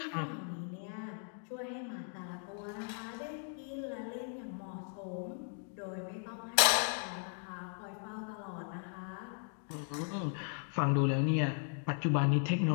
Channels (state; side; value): silent; right; 53 dB below the other